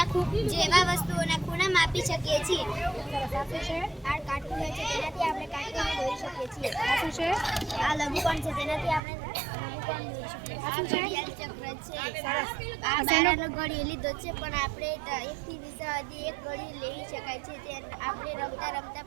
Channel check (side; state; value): left; drops out; at 9.0 s